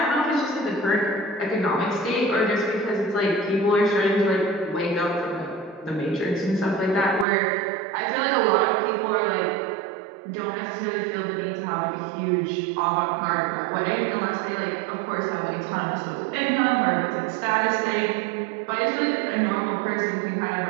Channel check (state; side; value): drops out; left; at 7.2 s